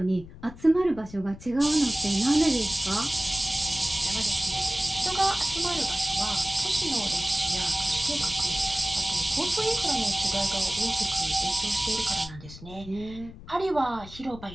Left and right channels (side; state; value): left; noise; rumble, 16 dB below the sound